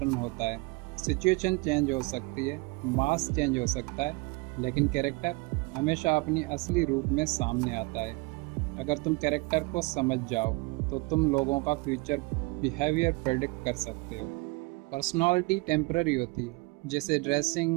होता है। सिचुएशन चेंज हो सकती है, मास चेंज हो सकता है, लेकिन कैरेक्टर हमेशा अपनी असली रूप में सामने आता है। अगर तुम कैरेक्टर को समझ जाओ तो तुम लोगों का फ्यूचर बिहेवियर प्रेडिक्ट कर सकते हो। पर्सनालिटी टेम्पररी होती है, जैसे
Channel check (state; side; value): quieter; left; 26.0 dB